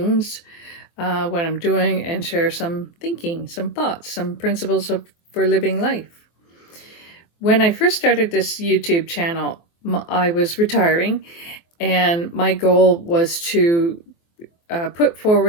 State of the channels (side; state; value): right; late; 24 ms